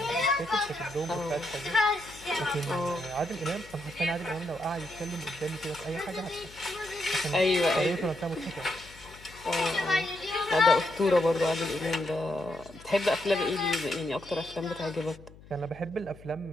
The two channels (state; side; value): noise; left; hum, 21 dB below the sound